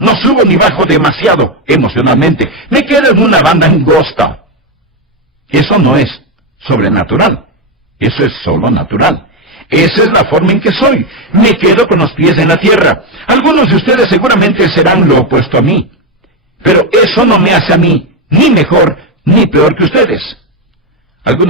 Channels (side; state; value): both; normal; correlation 0.09